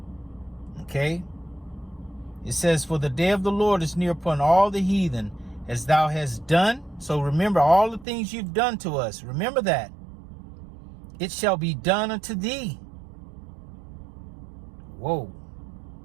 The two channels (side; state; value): left; drops out; at 8.1 s